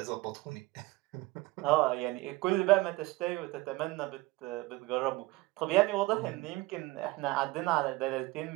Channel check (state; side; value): quieter; left; 20.8 dB